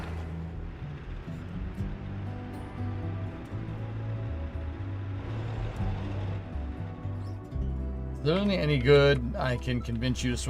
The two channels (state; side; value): identical; both; correlation 1.00